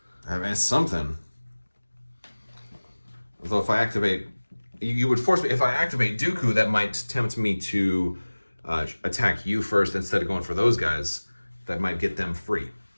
I mean, it's something. Although if I activate, you would force me. If I activate Dooku, that might tempt me to attack you first instead of going for those guys. That might get them free,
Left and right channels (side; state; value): both; inverted; correlation -1.00